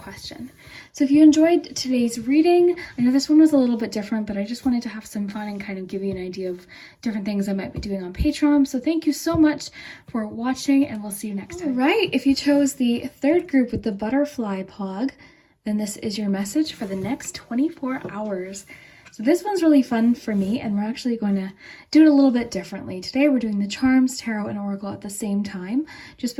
So if you enjoyed today's reading, I know this one was a little bit different, but I just wanted to have some fun and kind of give you an idea of different things I might be doing on Patreon. So thank you so much for watching, and we'll see you next time. All right, if you chose the third group with the butterfly pog, then this is your message for the next 24 hours. So this one's really fun for me, and we're actually going to do it a little bit differently. Today we're doing the Charms, Tarot, and Oracle at the same time, just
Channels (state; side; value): identical; both; correlation 1.00